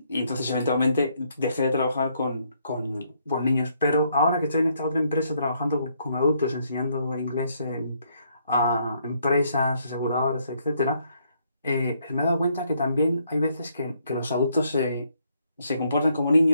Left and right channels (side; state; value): both; inverted; correlation -0.72